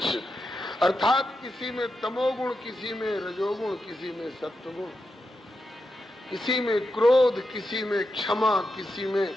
अर्थात किसी में तमोगुण, किसी में रजोगुण, किसी में सत्वगुण, किसी में क्रोध, किसी में क्षमा, किसी में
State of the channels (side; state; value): both; normal; correlation 0.87